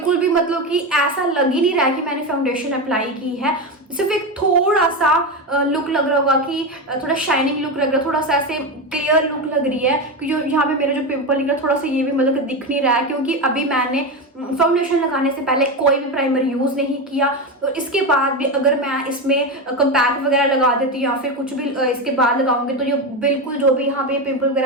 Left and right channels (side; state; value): both; normal; correlation 0.16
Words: भी मतलब कि ऐसा लग ही नहीं रहा है कि मैंने फाउंडेशन अप्लाई की है। सिर्फ एक थोड़ा सा लुक लग रहा होगा कि थोड़ा शाइनिंग लुक लग रहा है, थोड़ा सा ऐसे क्लियर लुक लग रही है कि जो यहाँ पे मेरा जो पिंपल निकला थोड़ा सा ये भी मतलब कि दिख नहीं रहा है, क्योंकि अभी मैंने फाउंडेशन लगाने से पहले कोई भी प्राइमर यूज़ नहीं किया। तो इसके बाद भी अगर मैं इसमें कंपैक्ट वगैरह लगा देती हूँ या फिर कुछ भी इसके बाद लगाऊंगी तो ये बिल्कुल जो भी यहाँ पे पिंपल